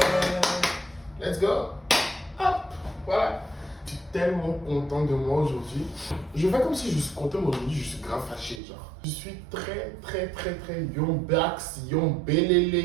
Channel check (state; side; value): drops out; left; at 8.6 s